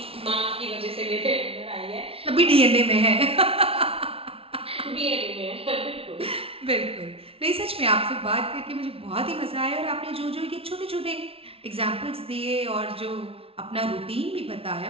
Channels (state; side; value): late; left; 0.27 ms